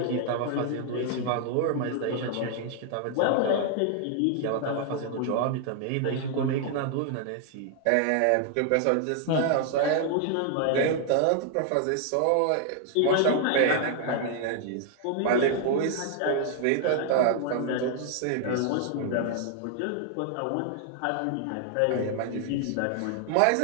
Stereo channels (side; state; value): both; different; correlation 0.00